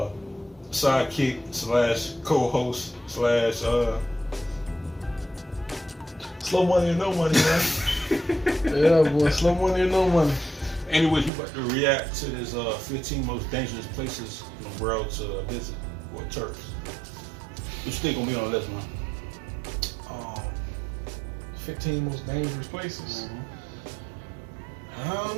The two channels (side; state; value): left; drops out; at 11.3 s